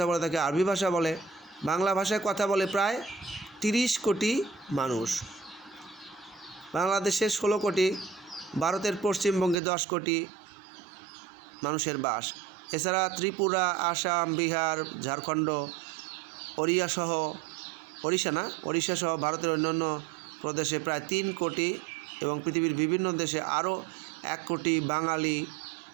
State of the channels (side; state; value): left; drops out; at 9.6 s